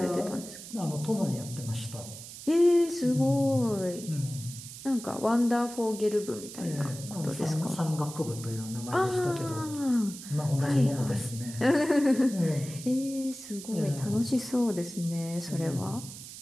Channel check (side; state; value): right; noise; hiss, 13 dB below the sound